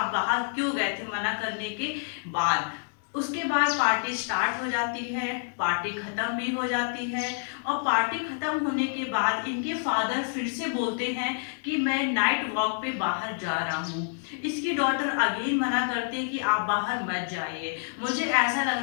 बाहर क्यों गए थे मना करने के बाद। उसके बाद पार्टी स्टार्ट हो जाती है, पार्टी खत्म भी हो जाती है, और पार्टी खत्म होने के बाद इनके फादर फिर से बोलते हैं कि मैं नाइट वॉक पे बाहर जा रहा हूँ। इसकी डॉटर अगेन मना करती है कि आप बाहर मत जाइए, मुझे ऐसा लग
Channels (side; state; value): right; silent; digital silence